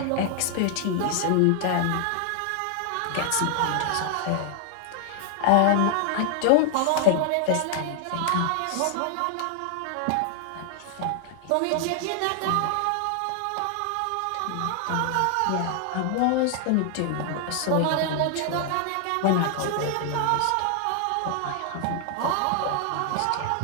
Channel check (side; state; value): both; different; correlation 0.00